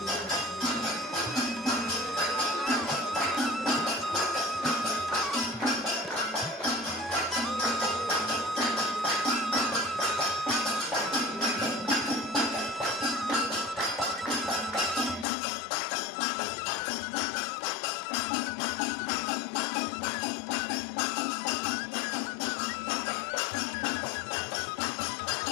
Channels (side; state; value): right; drops out; at 15.2 s